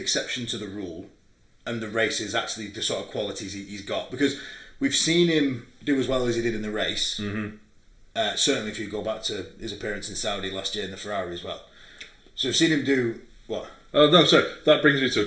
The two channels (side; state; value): both; identical; correlation 1.00